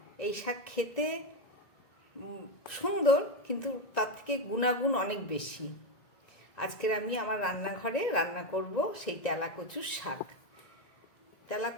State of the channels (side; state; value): right; late; 1.9 ms